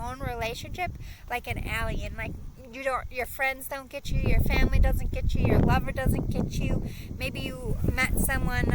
relationship, like an alien. Like, your friends don't get you, your family doesn't get you, your lover doesn't get you. Maybe you met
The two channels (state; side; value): identical; both; correlation 1.00